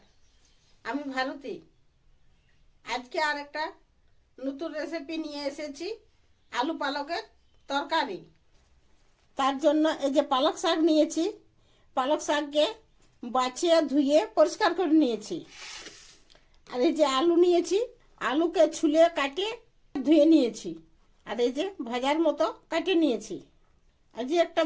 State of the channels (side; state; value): both; identical; correlation 1.00